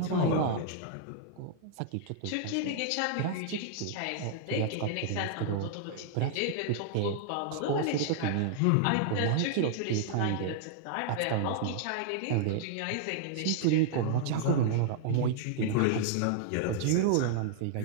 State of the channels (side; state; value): both; different; correlation -0.01